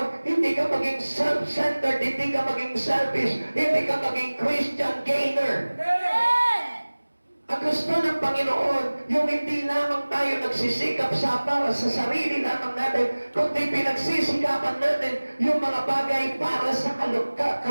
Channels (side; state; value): both; inverted; correlation -1.00